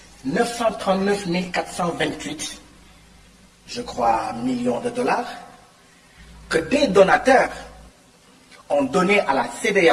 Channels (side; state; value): both; identical; correlation 1.00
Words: 939 428, je crois, millions de dollars, que des donateurs ont donné à la